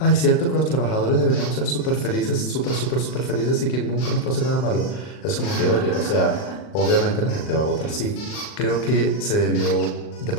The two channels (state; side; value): late; right; 39 ms